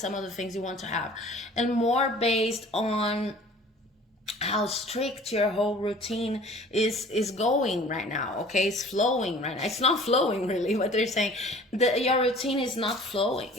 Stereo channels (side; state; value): both; normal; correlation 0.48